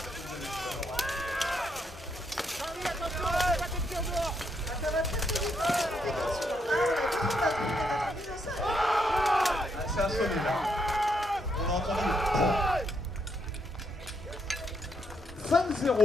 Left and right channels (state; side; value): normal; both; correlation 0.77